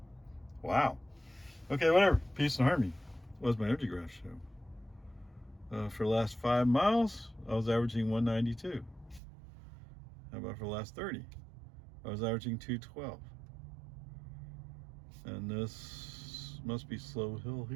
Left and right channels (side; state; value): left; drops out; at 9.2 s